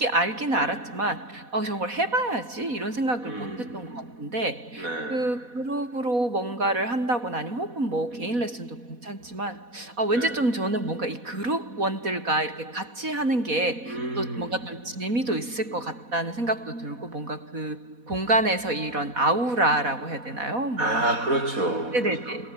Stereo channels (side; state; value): left; late; 4.1 ms